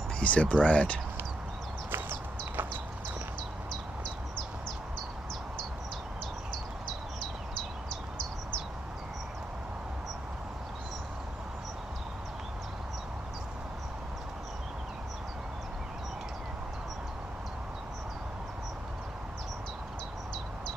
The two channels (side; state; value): both; normal; correlation 0.81